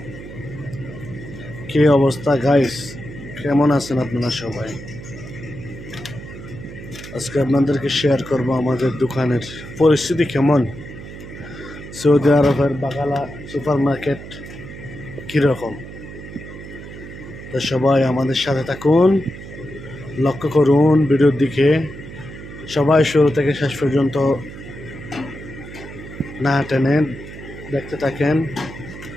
কি অবস্থা গাইস? কেমন আছেন আপনারা সবাই? আজকে আপনাদেরকে শেয়ার করব আমাদের দোকানের পরিস্থিতি কেমন। সৌদি আরবের বাগালা সুপার মার্কেট কীরকম। তো সবাই আমাদের সাথে থাকুন, লক্ষ্য করুন ভিডিওর দিকে। সবাই শুরু থেকে শেষ পর্যন্ত না টেনে দেখতে থাকেন।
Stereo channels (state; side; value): noise; right; hum, 13 dB below the sound